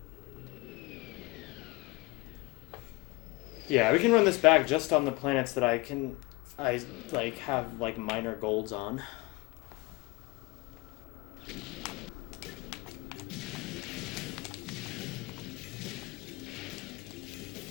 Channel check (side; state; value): right; quieter; 23.7 dB